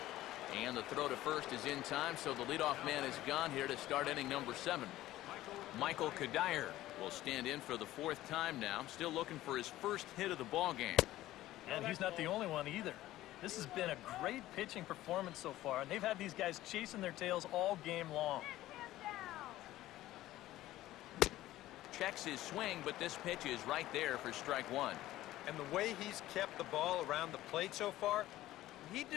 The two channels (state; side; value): quieter; right; 15.3 dB